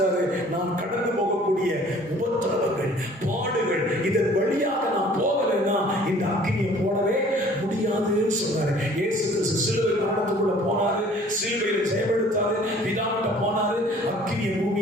நான் கடந்து போகக்கூடிய உபத்திரவங்கள், பாடுகள், இதன் வழியாக நான் போகலைன்னா இந்த அக்கினியை போடவே முடியாதுன்னு சொன்னாரு. இயேசு கிறிஸ்து சிலுவை மரணத்துக்குள்ள போனாரு, சிலுவையில ஜெயமெடுத்தாரு, பிதாவிட்ட போனாரு, அக்கினியை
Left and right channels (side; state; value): both; normal; correlation 0.52